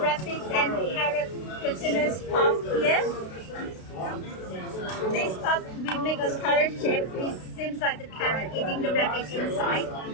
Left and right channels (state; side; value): late; right; 32 ms